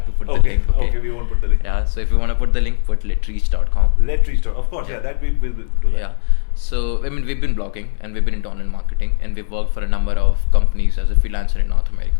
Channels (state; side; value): silent; right; 68 dB below the other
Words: to put the Okay, link. okay, we won't put the link. Yeah, so if you want to put the link, put LetReach.com. LetReach. Of course, yeah, that we will do that. Yeah. So we've been blogging and we've been into online marketing, and we've worked for a number of companies as a freelancer in North